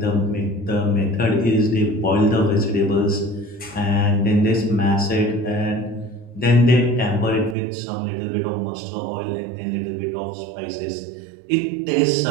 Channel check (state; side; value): drops out; left; at 7.6 s